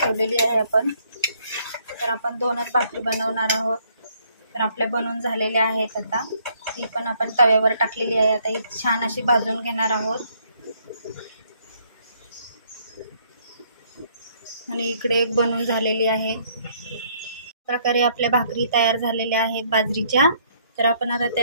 आहे आपण. तर आपण 2च भाकरी बनवणार आहोत. तर आपल्या बनवून झालेल्या आहेत. आता ती पण आपण तव्यावर टाकलेली आहे. आता ही छान अशी भाजून घेणार आहोत. आणि इकडे एक बनवून झालेली आहे. प्रकारे आपल्या भाकरी तयार झालेल्या आहेत बाजरीच्या. तर आपण आता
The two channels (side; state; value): both; inverted; correlation -0.66